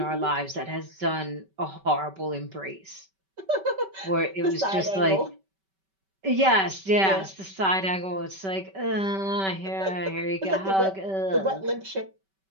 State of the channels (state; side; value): late; left; 5.2 ms